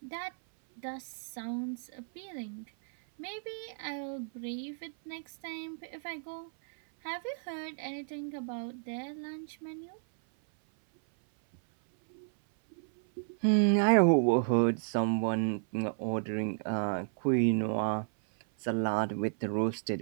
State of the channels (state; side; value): silent; left; 56 dB below the other